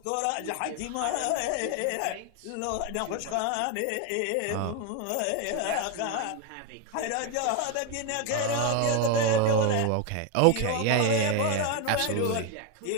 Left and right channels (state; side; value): different; both; correlation 0.02